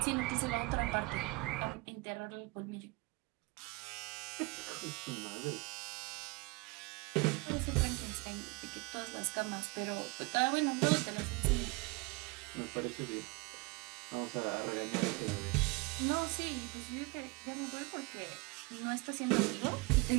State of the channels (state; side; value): quieter; left; 26.1 dB